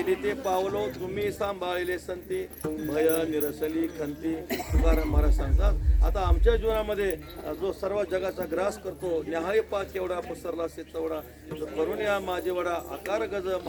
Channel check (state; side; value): identical; both; correlation 1.00